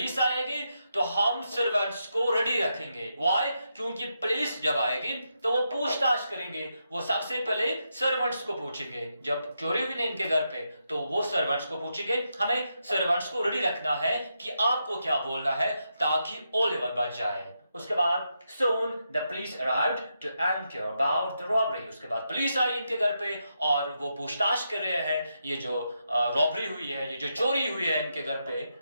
आएगी तो हम सर्वेंट्स को रेडी रखेंगे. Why? क्योंकि पुलिस जब आएगी तो वो पूछताछ करेंगे. वो सबसे पहले सर्वेंट्स को पूछेंगे. जब चोरी हुई ना इनके घर पे तो वो सर्वेंट्स को पूछेंगे. हमें सर्वेंट्स को रेडी रखना है कि आपको क्या बोलना है ताकि ओलिवर बच जाए. उसके बाद soon the police arrived to inquire about the robbery. उसके बाद पुलिस आई इनके घर पे और वो पूछताछ कर रहे हैं ये जो रॉबरी हुई है, ये जो चोरी हुई है इनके घर पे.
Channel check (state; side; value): inverted; both; correlation -0.83